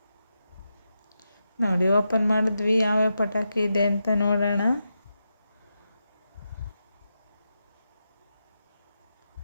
ನೋಡಿ, ಓಪನ್ ಮಾಡಿದ್ವಿ. ಯಾವ್ಯಾವ ಪಟಾಕಿ ಇದೆ ಅಂತ ನೋಡೋಣ.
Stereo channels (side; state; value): both; inverted; correlation -0.88